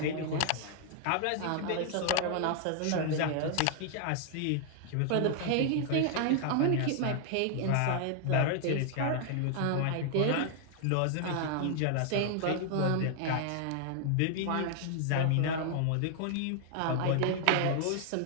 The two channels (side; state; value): both; different; correlation 0.00